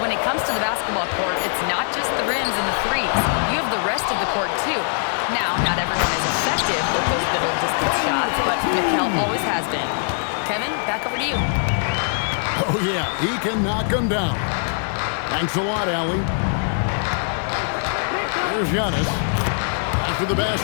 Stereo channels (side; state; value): right; silent; 64 dB below the other